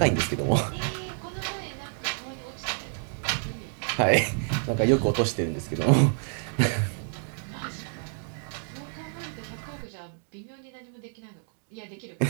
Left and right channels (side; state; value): left; silent; 59 dB below the other